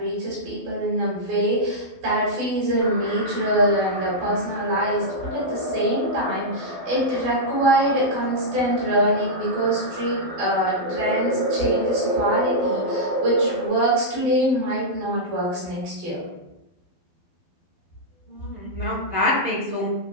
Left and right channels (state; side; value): late; left; 12 ms